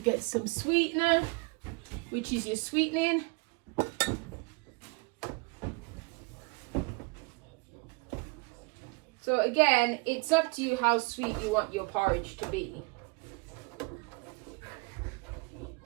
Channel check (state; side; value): quieter; left; 28.7 dB